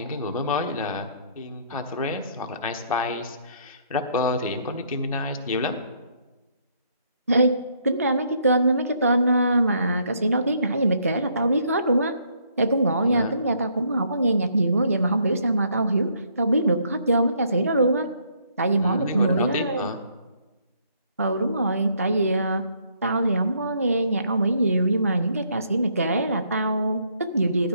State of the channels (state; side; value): inverted; both; correlation -0.68